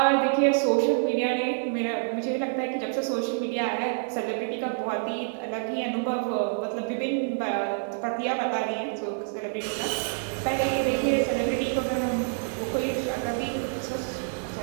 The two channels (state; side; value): silent; left; digital silence